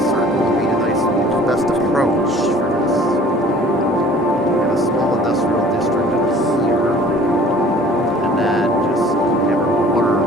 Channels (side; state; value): both; normal; correlation 0.49